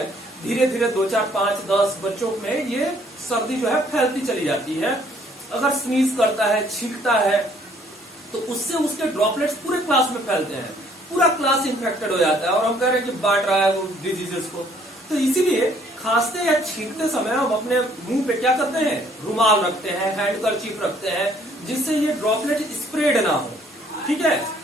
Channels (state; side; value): normal; both; correlation 0.63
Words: धीरे धीरे 2, 4, 5, 10 बच्चों में ये सर्दी जो है फैलती चली जाती है। अगर स्नीज करता है, छींकता है, तो उससे उसके ड्रॉपलेट्स पूरे क्लास में फैलते हैं, पूरा क्लास इन्फेक्टेड हो जाता है और हम कह रहे हैं कि बांट रहा है वो डिजीजेस को। तो इसीलिए खांसते या छींकते समय हम अपने मुंह पे क्या करते हैं? रुमाल रखते हैं, हैंडकरचीफ रखते हैं, जिससे ये ड्रॉपलेट स्प्रेड ना हो। ठीक है,